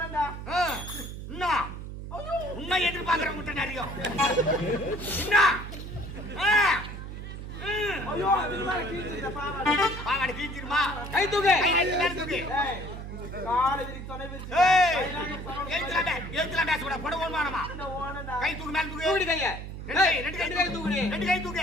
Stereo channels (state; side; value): noise; right; hum, 9 dB below the sound